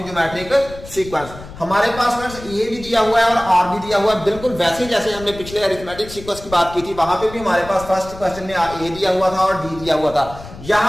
geometric sequence। हमारे पास a भी दिया हुआ है और r भी दिया हुआ है, बिल्कुल वैसे जैसे हमने पिछले अरिथमेटिक सीक्वेंस की बात की थी, वहां पे भी हमारे पास फर्स्ट क्वेश्चन में a दिया हुआ था और d दिया हुआ था।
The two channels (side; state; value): left; noise; rumble, 15 dB below the sound